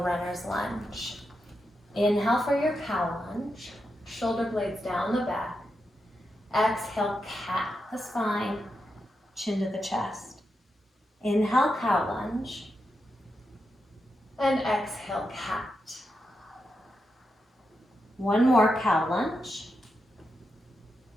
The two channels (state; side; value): normal; both; correlation 0.86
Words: lunge. Inhale for your cow lunge. Shoulder blades down the back. Exhale, cat the spine, chin to the chest. Inhale, cow lunge. And exhale, cat. One more cow lunge.